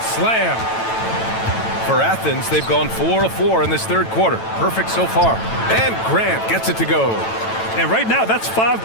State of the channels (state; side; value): late; right; 9.0 ms